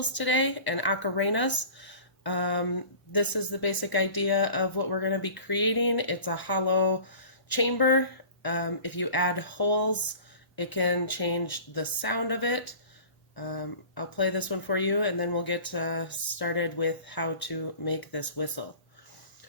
today and ocarenas. This is the basic idea of what we're going to be creating. It's a hollow chamber. If you add holes, it can change the sound of it. I'll play this one for you and then we'll get started with how to make this whistle.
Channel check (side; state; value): right; late; 1.0 ms